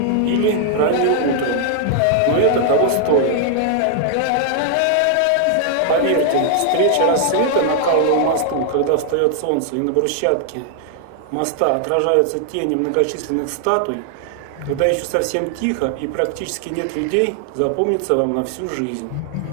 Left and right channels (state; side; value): different; both; correlation 0.00